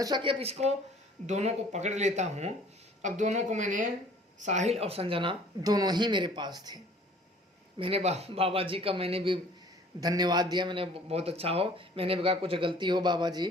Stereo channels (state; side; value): normal; both; correlation 0.52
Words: सोचा कि अब इसको दोनों को पकड़ लेता हूँ। अब दोनों को मैंने, साहिल और संजना दोनों ही मेरे पास थे। मैंने बाबा जी का मैंने भी धन्यवाद दिया। मैंने बहुत अच्छा हो, मैंने कहा कुछ गलती हो बाबा जी